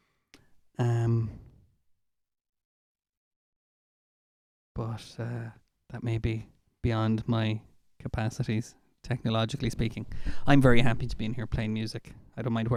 But that may be beyond my capacities, technologically speaking. I'm very happy to be in here playing music. I don't mind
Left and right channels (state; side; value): identical; both; correlation 1.00